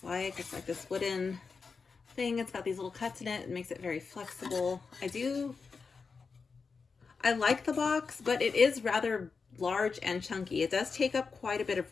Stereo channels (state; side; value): quieter; right; 5.0 dB